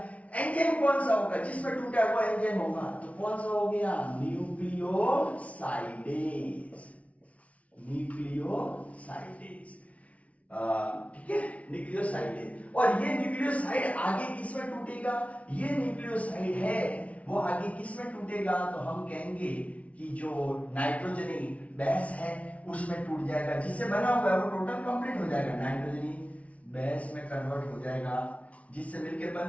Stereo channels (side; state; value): right; late; 0.066 ms